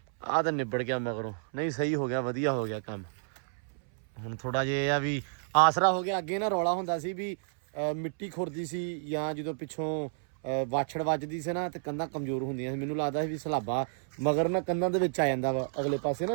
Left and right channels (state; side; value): silent; left; 57 dB below the other